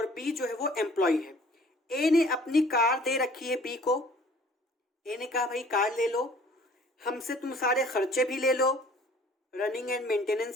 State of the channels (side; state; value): both; normal; correlation 0.53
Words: बी जो है वो एम्प्लॉय है। ए ने अपनी कार दे रखी है बी को। ए ने कहा भाई कार ले लो, हमसे तुम सारे खर्चे भी ले लो, रनिंग एंड